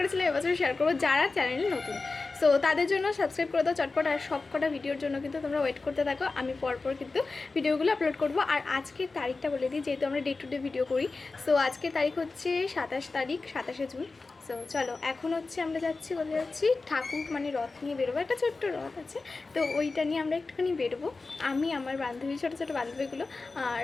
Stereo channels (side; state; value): right; quieter; 3.8 dB